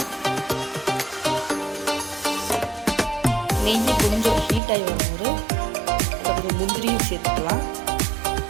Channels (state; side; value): drops out; left; at 4.6 s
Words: நெய் கொஞ்சம் ஹீட் ஆகி வரும்போது அதில் கொஞ்சம் முந்திரியும் சேர்த்துக்கலாம்.